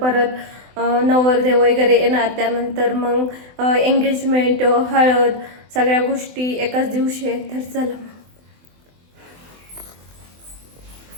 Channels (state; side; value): late; left; 24 ms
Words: परत नवरदेव वगैरे येणार, त्यानंतर मग एंगेजमेंट, हळद, सगळ्या गोष्टी एकाच दिवशी आहेत। तर चला